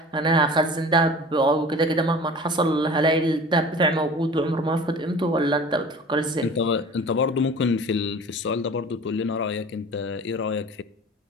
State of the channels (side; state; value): both; normal; correlation 0.41